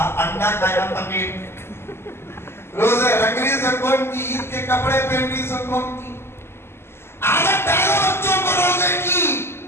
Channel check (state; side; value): late; right; 0.12 ms